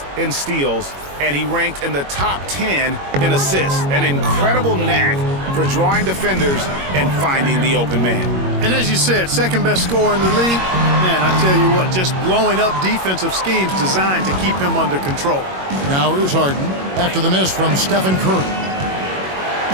in steals, and he ranked in the top 10 in assists. An incredible knack for drawing defenders and finding the open man. And as you said, second best scorer in the league. Man, I tell you what, just blowing up defensive schemes designed to keep him under control. Now here's Harden after the miss from Stephen Curry.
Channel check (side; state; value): left; late; 21 ms